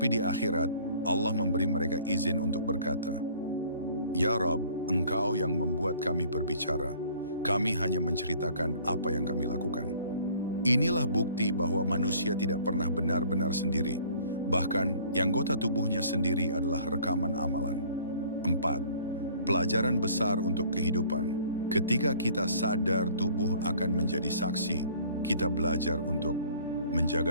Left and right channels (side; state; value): both; inverted; correlation -0.53